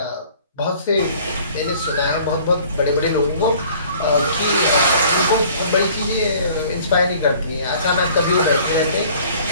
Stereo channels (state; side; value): inverted; both; correlation -0.53